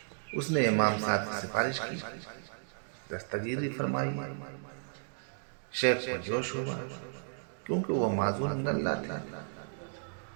اس نے امام صاحب کی سفارش کی، دستگیری فرمائی۔ شیخ کو جوش ہوا کیونکہ وہ معذور من اللہ تھا،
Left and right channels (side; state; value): left; silent; digital silence